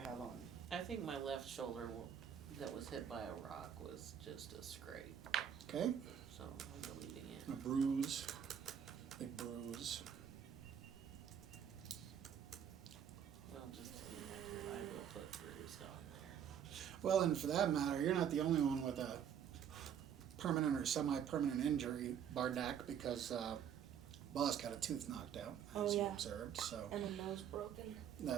on. I think my left shoulder that was hit by a rock was just a scrape, Okay, so I'm deleting a it. bruise, big bruise. Well, just to be accurate, I will put bruised on there. Well, and for that matter, you're not the only one with a permanent or semi-permanent injury, Bardak, because Boss got a tooth knocked out, Oh, as you yeah. observed. So And a nose broken.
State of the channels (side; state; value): left; quieter; 8.6 dB